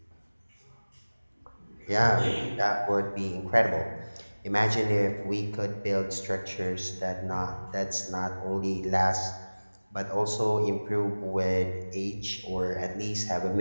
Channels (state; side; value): inverted; both; correlation -1.00